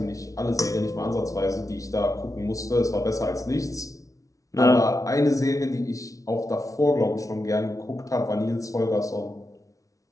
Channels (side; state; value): right; late; 0.17 ms